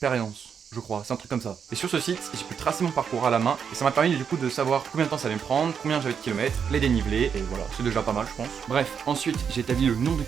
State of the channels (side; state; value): left; quieter; 7.1 dB